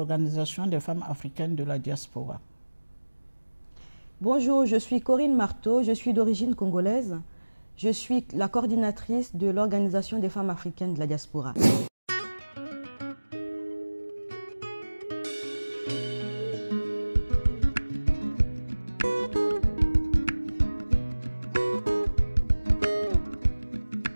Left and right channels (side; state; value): both; inverted; correlation -1.00